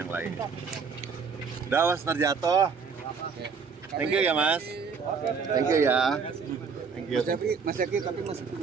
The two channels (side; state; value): left; quieter; 5.6 dB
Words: lain. Dawas terjatuh. Thank you ya Mas. Thank you ya. Thank you. Mas Zaki, tapi masih